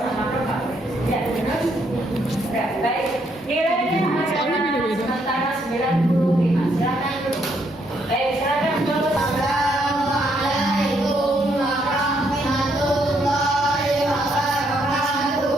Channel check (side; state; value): both; normal; correlation 0.73